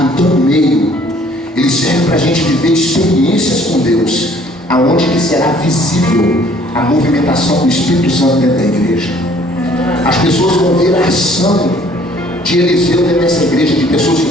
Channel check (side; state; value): both; normal; correlation 0.58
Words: Então o meio, ele serve para a gente viver experiências com Deus, aonde que será visível a movimentação do Espírito Santo dentro da igreja. As pessoas vão ver a ação de Eliseu dentro dessa igreja, de pessoas